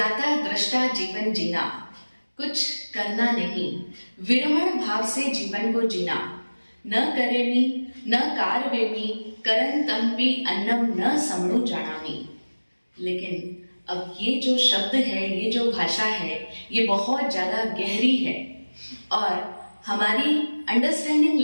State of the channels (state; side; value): inverted; both; correlation -1.00